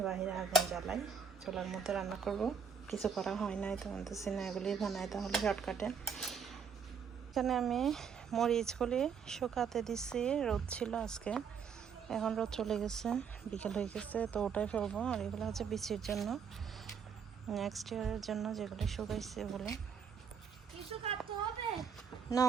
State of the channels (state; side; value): quieter; left; 6.6 dB